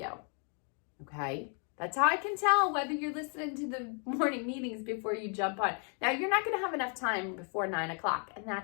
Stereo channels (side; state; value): right; quieter; 40.0 dB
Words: Okay? That's how I can tell whether you're listening to the morning meetings before you jump on. Now, you're not going to have enough time before 9 o'clock, and